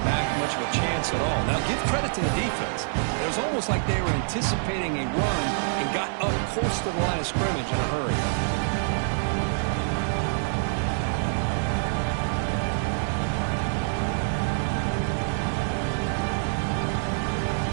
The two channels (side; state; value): left; silent; digital silence